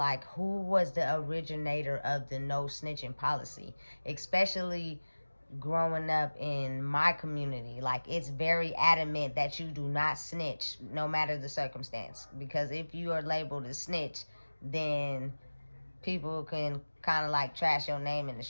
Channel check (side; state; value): both; inverted; correlation -1.00